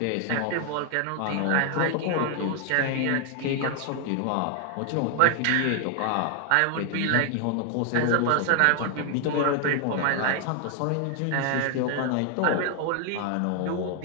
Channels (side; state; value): both; different; correlation 0.00